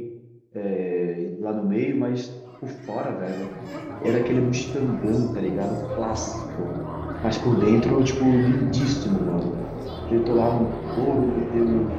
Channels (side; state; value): both; identical; correlation 1.00